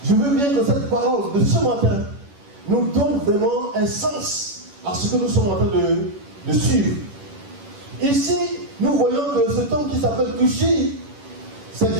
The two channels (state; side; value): late; left; 11 ms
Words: je veux bien que cette parole de ce matin nous donne vraiment un sens à ce que nous sommes en train de suivre. Ici, nous voyons que cet homme qui s'appelle Cushi, c'est